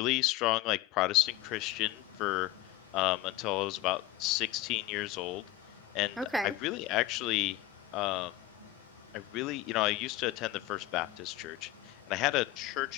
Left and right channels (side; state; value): right; quieter; 15.4 dB